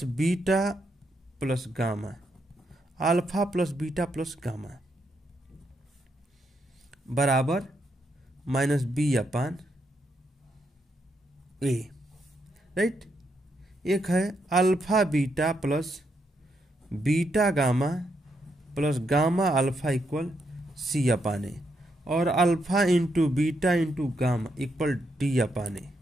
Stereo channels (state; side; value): normal; both; correlation 0.79